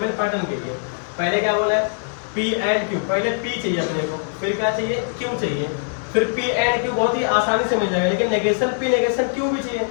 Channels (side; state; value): right; silent; 64 dB below the other